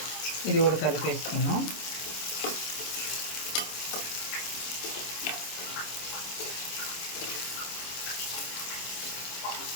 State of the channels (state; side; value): late; right; 26 ms